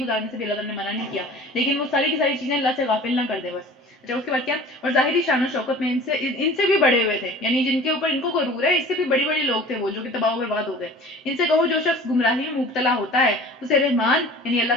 گزارنے سے بھی اللہ تعالیٰ نے منع نہیں کیا، لیکن وہ ساری کی ساری چیزیں اللہ سے غافل نہ کر دے بس۔ اچھا اس کے بعد کیا، اور ظاہری شان و شوکت میں ان سے بھی بڑے ہوئے تھے، یعنی جن کے اوپر ان کو غرور ہے، اس سے بھی بڑی بڑی لوگ تھے وہ جو کہ تباہ و برباد ہو گئے، ان سے کہو جو شخص گمراہی میں مبتلا ہوتا ہے اسے رحمان یعنی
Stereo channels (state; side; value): normal; both; correlation 0.44